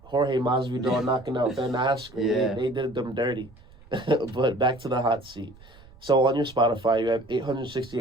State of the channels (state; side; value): noise; right; rumble, 24 dB below the sound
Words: Jorge Masvidal knocking out Ben Askren. Yeah. They did them dirty. But back to the hot seat. So on your Spotify, you have